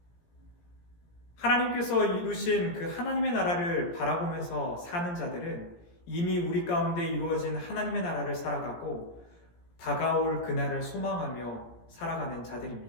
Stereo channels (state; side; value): late; right; 17 ms